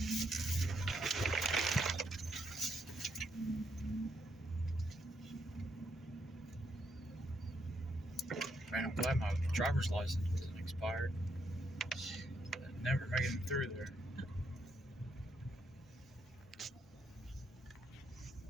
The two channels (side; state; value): both; normal; correlation 0.76